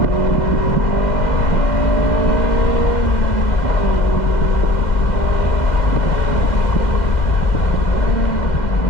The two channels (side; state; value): right; late; 2.1 ms